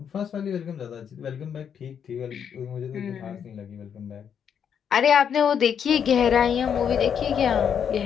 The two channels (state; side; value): quieter; right; 7.9 dB